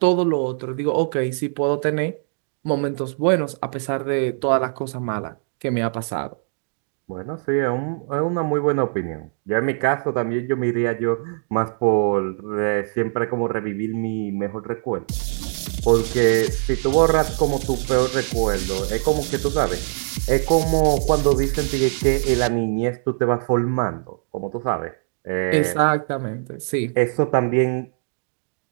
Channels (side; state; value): left; silent; digital silence